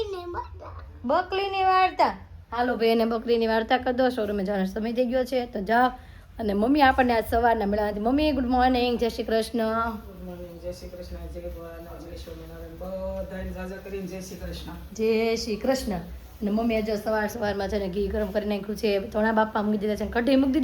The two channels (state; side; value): identical; both; correlation 1.00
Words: બકરીની વાર્તા. હાલો ભાઈ, એને બકરીની વાર્તા કરી દો. શોરૂમે જવાનો સમય થઈ ગયો છે તો જાઓ. અને મમ્મી આપણને આજ સવારના મળ્યા હતી. મમ્મી ગુડ મોર્નિંગ, જય શ્રી કૃષ્ણ. જય શ્રી કૃષ્ણ, જય ભગવાન, જય સ્વામિનારાયણ. બધાને જાજા કરીને જય શ્રી કૃષ્ણ. જય શ્રી કૃષ્ણ. અને મમ્મી આજે સવારમાં છે ને ઘી ગરમ કરી નાખ્યું છે. ધોણા બાપા મૂકી દીધા છે. કઢી મૂકી